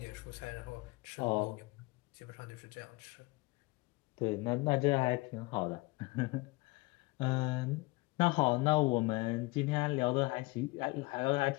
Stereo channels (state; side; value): quieter; right; 23.6 dB